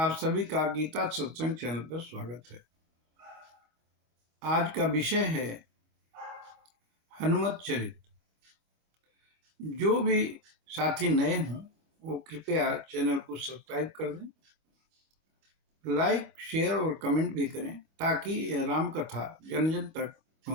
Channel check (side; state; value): left; late; 25 ms